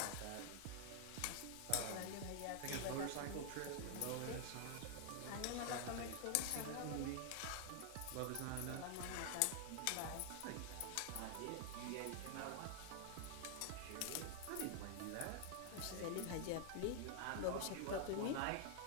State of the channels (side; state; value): both; different; correlation 0.00